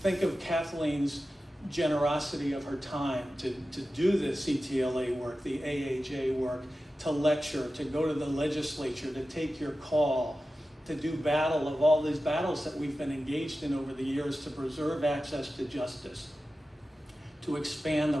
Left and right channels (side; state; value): both; normal; correlation 0.94